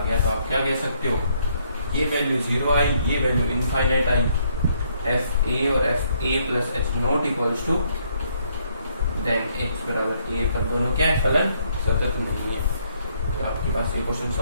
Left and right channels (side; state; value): both; inverted; correlation -0.70